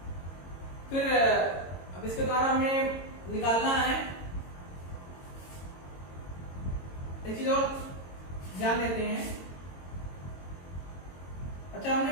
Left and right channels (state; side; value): late; right; 22 ms